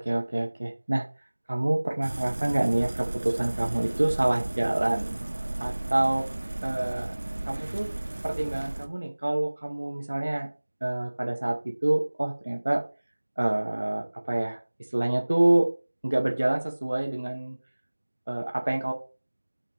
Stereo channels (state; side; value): inverted; both; correlation -1.00